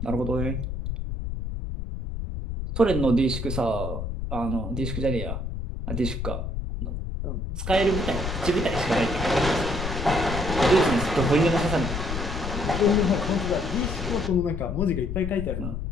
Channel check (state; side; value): noise; left; rumble, 4 dB below the sound